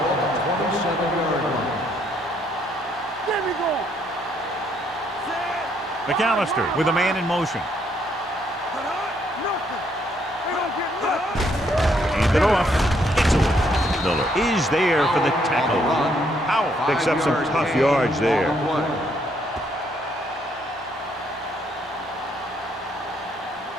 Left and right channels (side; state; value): both; normal; correlation 0.71